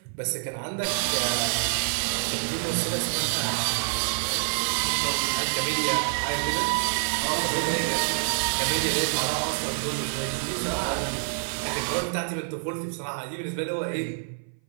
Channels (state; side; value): silent; left; 57 dB below the other